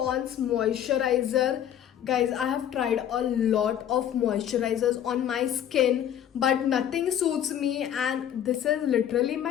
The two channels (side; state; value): right; quieter; 10.2 dB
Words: moisturizer. Guys, I have tried a lot of moisturizers on my skin, but nothing suits me, and this is literally